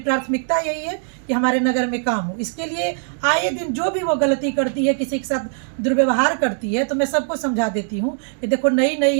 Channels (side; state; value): left; silent; digital silence